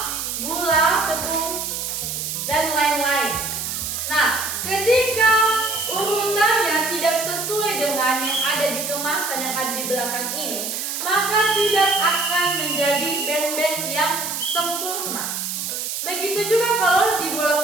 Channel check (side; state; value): right; noise; hiss, 4 dB below the sound